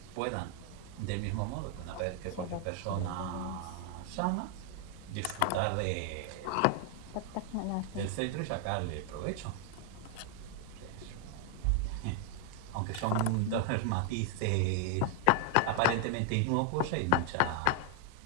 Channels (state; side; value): different; both; correlation 0.00